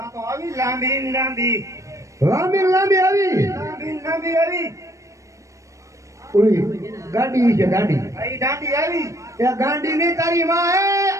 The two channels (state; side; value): late; left; 0.15 ms